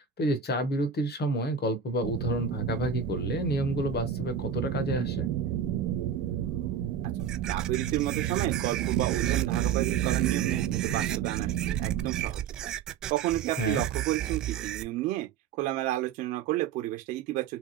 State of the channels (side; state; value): left; quieter; 7.3 dB